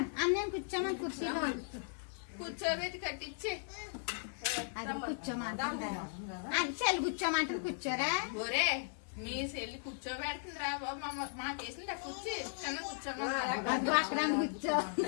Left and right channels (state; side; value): silent; right; digital silence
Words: అన్నయ్య కూర్చోమని కుర్చీలో కూర్చోబెట్టి కట్టించి అది కూర్చోమంటారు. చెల్లి కూర్చోమంటారు. కూర్చోరా ఒరే మీ చెల్లి కూర్చోబెడుతుంది రా బాబు. మా కేసులు కూర్చి చిన్న కూర్చోమా. అక్కడ కూర్చో